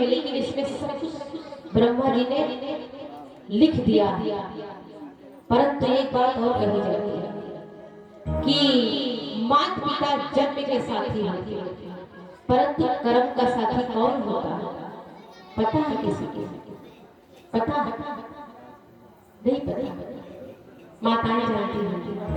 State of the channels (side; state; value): both; identical; correlation 1.00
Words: लेकिन इसमें सब कुछ ब्रह्मा जी ने लिख दिया। परंतु एक बात और कही जाती है कि माता पिता जन्म के साथी होते हैं, परंतु कर्म का साथी कौन होता है? पता है किसी के? पता नहीं? पता माताएं जानती हैं